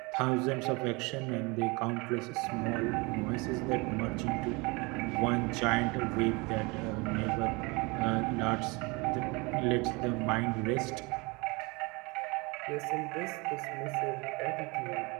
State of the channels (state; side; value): quieter; left; 26.8 dB